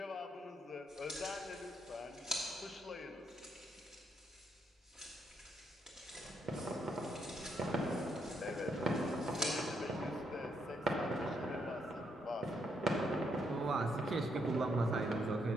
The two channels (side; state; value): both; normal; correlation 0.76